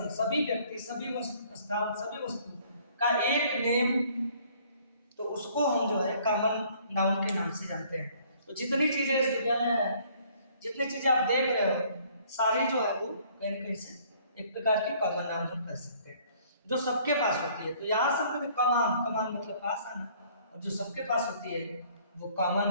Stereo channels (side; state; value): both; inverted; correlation -0.59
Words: सभी व्यक्ति, सभी स्थान, सभी वस्तु का एक नेम, तो उसको हम जो है कॉमन नाउन के नाम से जानते हैं। तो जितनी चीजें इस दुनिया में है, जितनी चीजें आप देख रहे हो, सारी जो है वो कहीं न कहीं से एक प्रकार की कॉमन नाउन हम कह सकते हैं। जो सबके पास होती है। तो यहाँ से हमको कमान, कमान मतलब पास आना, और जो सबके पास होती है वो कॉमन